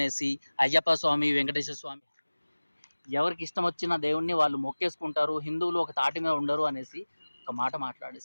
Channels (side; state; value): both; inverted; correlation -1.00